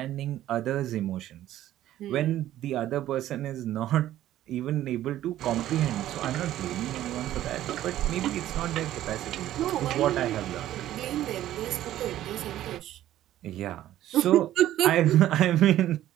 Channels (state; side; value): quieter; left; 13.2 dB